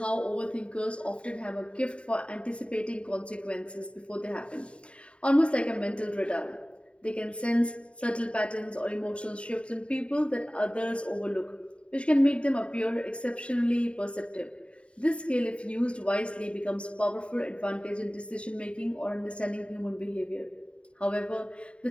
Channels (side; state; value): right; late; 0.059 ms